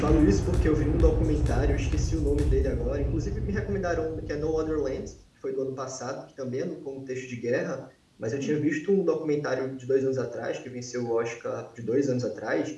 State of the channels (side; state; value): both; identical; correlation 1.00